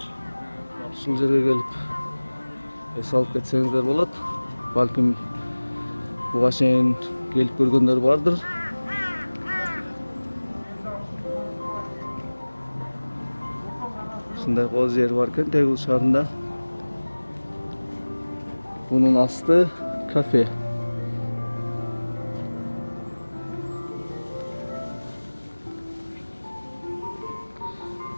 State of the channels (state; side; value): inverted; both; correlation -1.00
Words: ушул жерге келип эс алып кетсеңиздер болот. Балким буга чейин келип көргөндөр бардыр. Ушундай кооз жер бар экен Тегу шаарында. Бунун асты кафе.